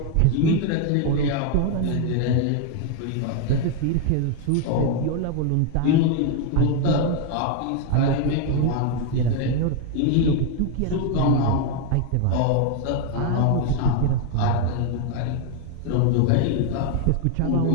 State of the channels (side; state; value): both; different; correlation 0.01